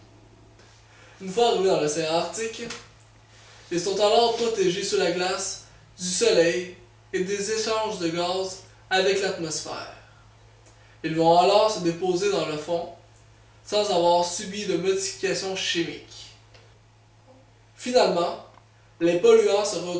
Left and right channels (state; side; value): identical; both; correlation 1.00